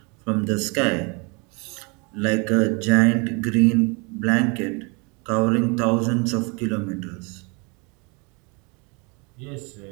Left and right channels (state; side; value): quieter; left; 30.7 dB